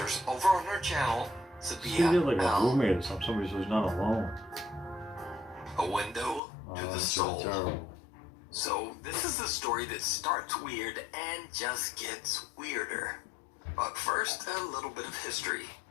over on her channel, She Sabia did like a L. roommate or something. Somebody who's not alone. A window to the That's soul. terrible. So this is a story that starts weird and just gets weirder. But first, a little bit of history.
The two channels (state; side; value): drops out; right; at 6.4 s